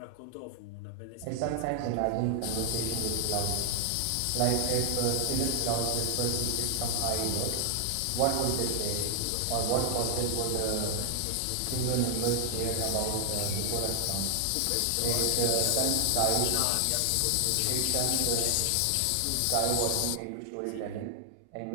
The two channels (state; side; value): different; both; correlation 0.00